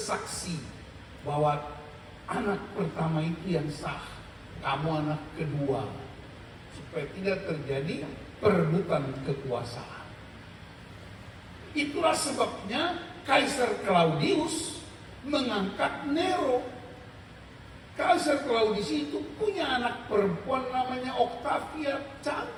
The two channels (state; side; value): identical; both; correlation 1.00